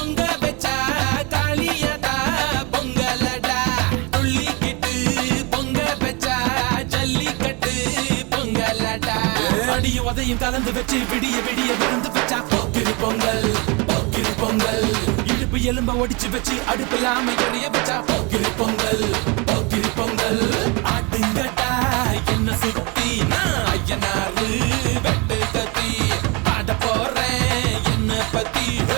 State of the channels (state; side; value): quieter; left; 28.8 dB